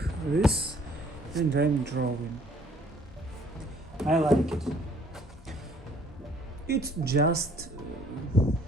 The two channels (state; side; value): normal; both; correlation 0.59